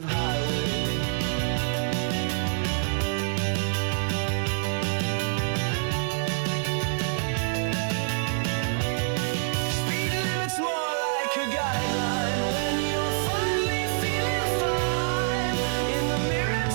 highway. Speed limit's more like a guideline when you're finally feeling fine. In the mirror,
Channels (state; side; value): silent; left; 61 dB below the other